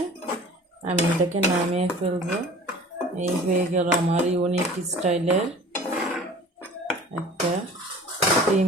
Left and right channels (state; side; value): normal; both; correlation 0.44